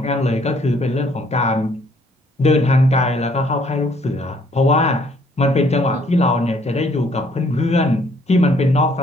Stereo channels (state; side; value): normal; both; correlation 0.64